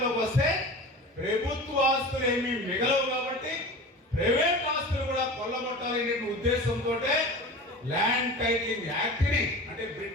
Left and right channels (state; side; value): normal; both; correlation 0.34